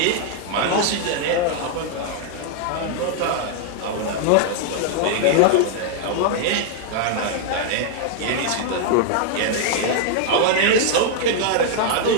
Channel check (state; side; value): different; both; correlation 0.00